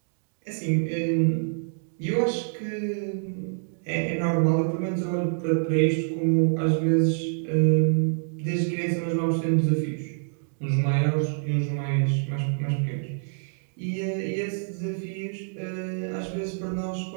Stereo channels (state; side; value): silent; left; digital silence